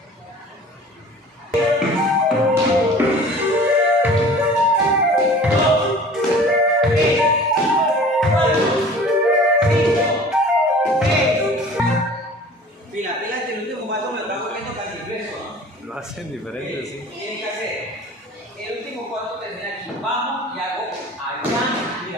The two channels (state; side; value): normal; both; correlation 0.44